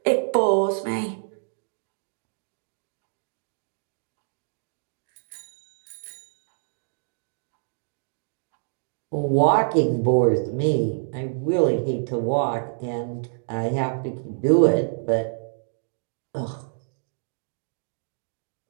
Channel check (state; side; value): silent; left; digital silence